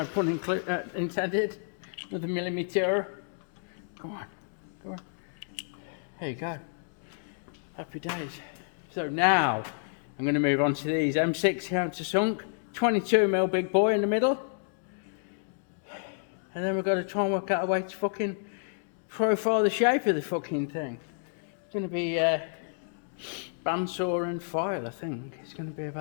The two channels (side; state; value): right; silent; digital silence